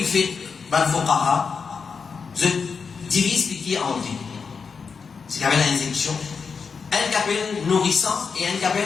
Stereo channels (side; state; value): right; quieter; 5.5 dB